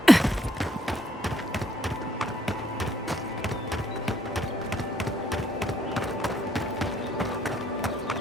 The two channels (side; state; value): both; normal; correlation 0.69